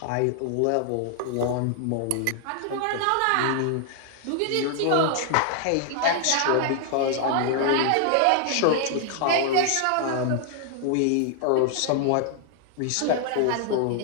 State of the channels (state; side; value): different; both; correlation 0.00